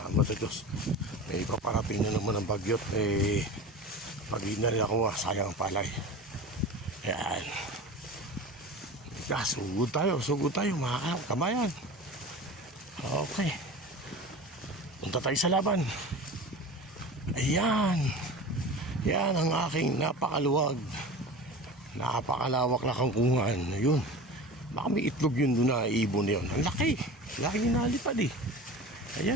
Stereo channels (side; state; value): both; normal; correlation 0.33